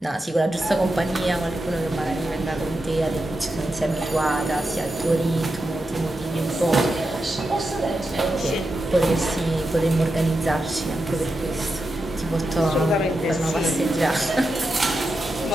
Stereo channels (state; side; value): normal; both; correlation 0.88